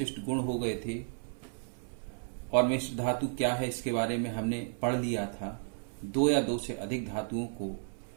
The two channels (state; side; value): silent; left; digital silence